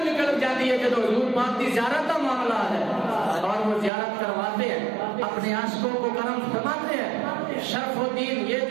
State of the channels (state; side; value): drops out; left; at 3.9 s